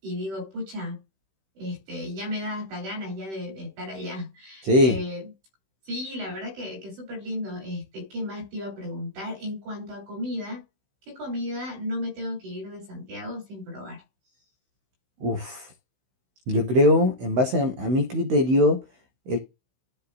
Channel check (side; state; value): left; late; 16 ms